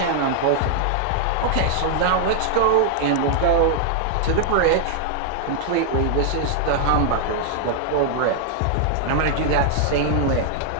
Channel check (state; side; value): different; both; correlation 0.00